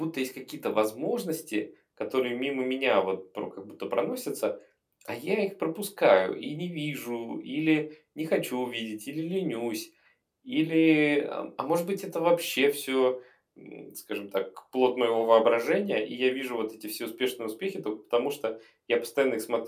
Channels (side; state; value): both; identical; correlation 1.00